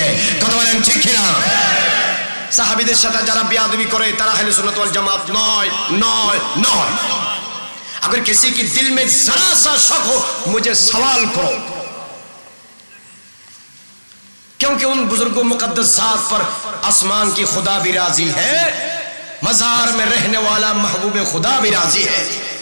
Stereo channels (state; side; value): inverted; both; correlation -1.00